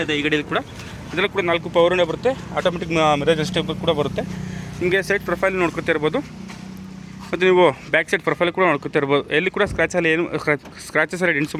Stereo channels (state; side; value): identical; both; correlation 1.00